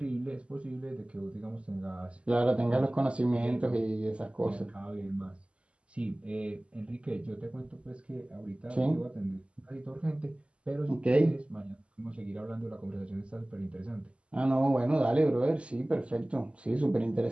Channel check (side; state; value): left; late; 0.055 ms